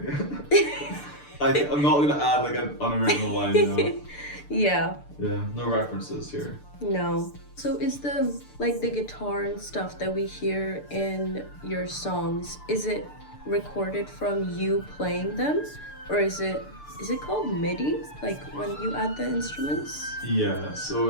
I'm not gonna add like an unoriginal line, you know? Yeah, no references here. No. So is the guitar and stuff that we hear in your songs, is it recorded from you playing them? Or is it called MIDI? Like when you add the instruments? Yeah, so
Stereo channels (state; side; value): late; right; 6.8 ms